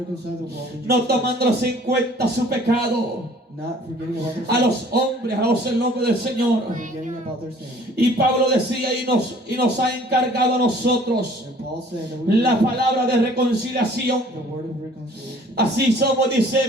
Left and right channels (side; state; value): both; normal; correlation 0.54